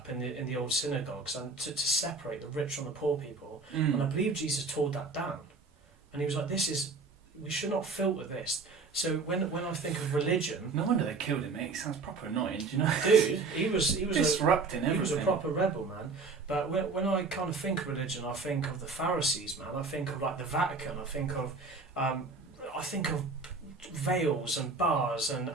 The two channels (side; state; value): left; quieter; 4.1 dB